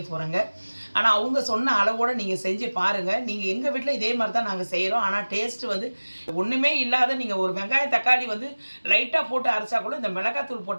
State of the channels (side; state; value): both; inverted; correlation -1.00